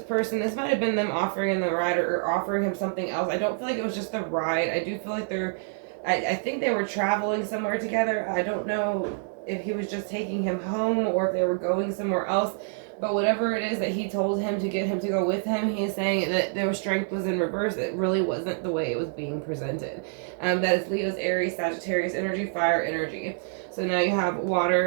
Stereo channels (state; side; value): silent; left; digital silence